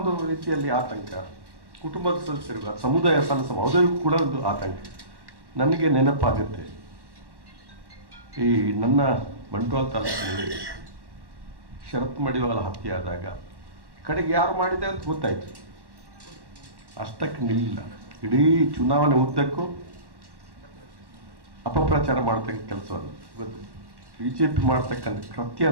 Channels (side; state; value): left; late; 1.1 ms